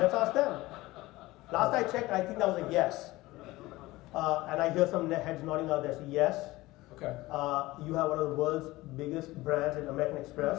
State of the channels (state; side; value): quieter; right; 19.1 dB